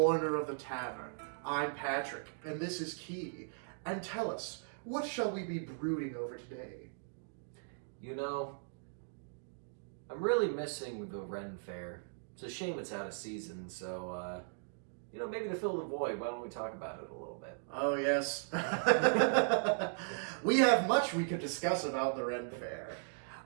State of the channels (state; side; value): silent; left; digital silence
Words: of the tavern. I'm Patrick, and this is Key. And tell us, what shall we be brooding over today? You know, I'm really missing the Ren Fair. It's a shame it's out of season, so, maybe to fill the void, why don't we talk about it a little bit? Oh, yes. We have much we could discuss about the Ren Fair.